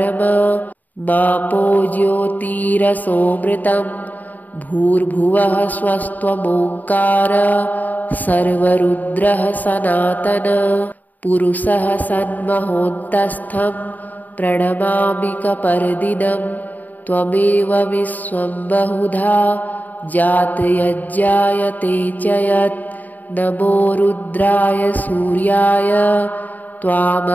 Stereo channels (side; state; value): right; late; 0.082 ms